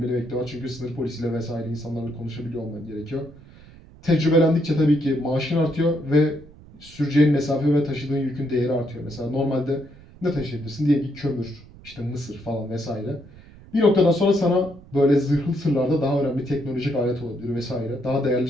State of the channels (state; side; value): noise; right; rumble, 22 dB below the sound